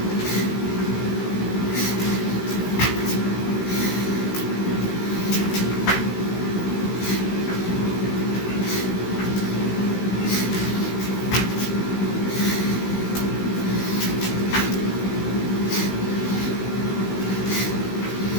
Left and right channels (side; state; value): right; late; 16 ms